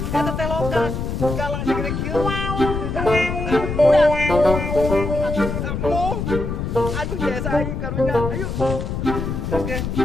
Eta teh loka. Galang segede kieu. Aduh jasa aing karunya. Ayo. Oke.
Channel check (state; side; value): noise; left; rumble, 3 dB below the sound